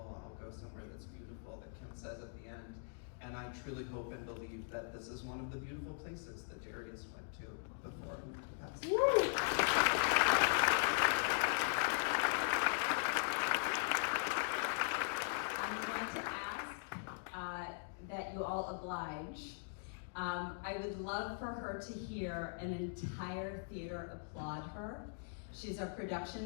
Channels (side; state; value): right; silent; digital silence